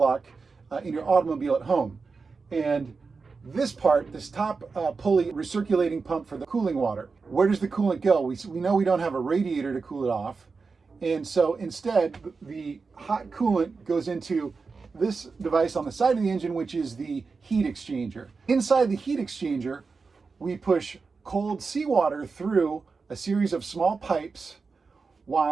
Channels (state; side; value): quieter; left; 4.6 dB